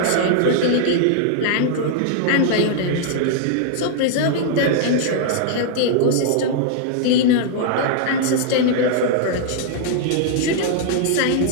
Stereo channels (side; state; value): both; different; correlation -0.01